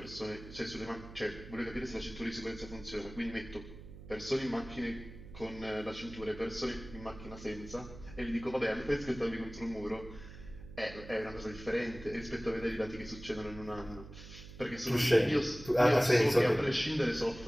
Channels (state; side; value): noise; right; hum, 15 dB below the sound